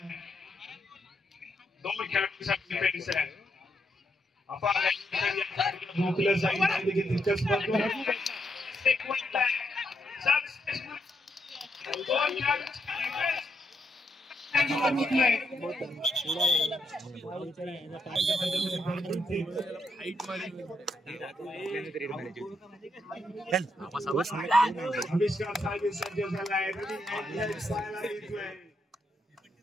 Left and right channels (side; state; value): both; normal; correlation 0.78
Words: 2 खेळाडूंसाठी डिफेन्स आहे. रोखलं जाईल देखील तितकंच महत्त्वाचं.